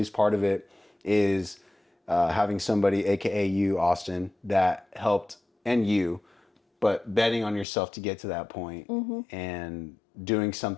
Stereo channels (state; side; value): drops out; right; at 7.7 s